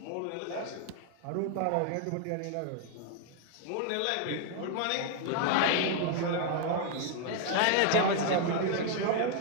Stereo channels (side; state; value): both; different; correlation 0.00